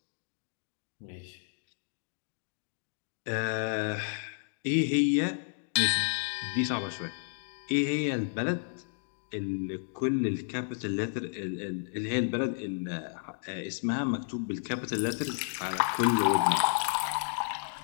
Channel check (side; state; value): right; silent; digital silence